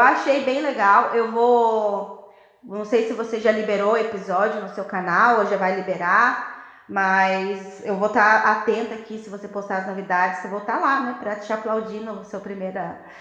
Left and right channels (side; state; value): both; identical; correlation 1.00